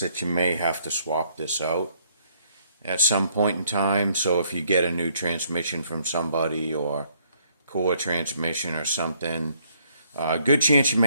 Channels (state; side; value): inverted; both; correlation -0.68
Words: you may have to swap this out at some point in time. So if you get a new transmission from somebody or core transmission or something, good chance you